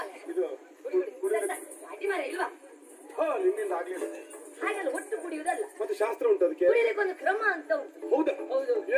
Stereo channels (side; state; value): both; identical; correlation 1.00